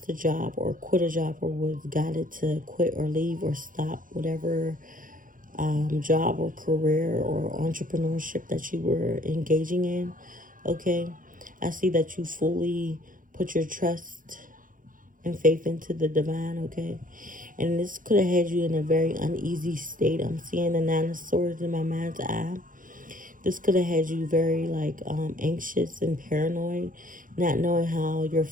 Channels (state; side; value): late; left; 0.39 ms